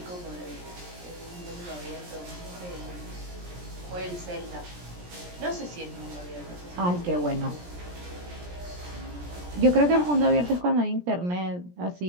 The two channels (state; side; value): late; left; 17 ms